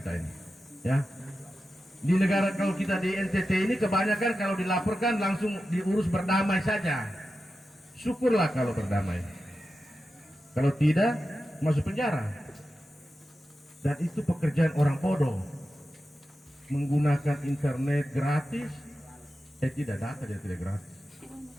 ini, ya. Di negara kalau kita di NTT ini kebanyakan kalau dilaporkan langsung diurus berdamai saja. Syukurlah kalau berdamai. Kalau tidak masuk penjara. Dan itu pekerjaan orang bodoh. Menggunakan internet gratis, tidak data dia tidak gratis.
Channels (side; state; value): both; normal; correlation 0.92